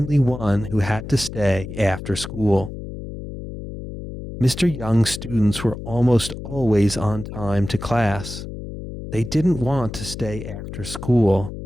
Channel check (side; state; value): left; noise; hum, 10 dB below the sound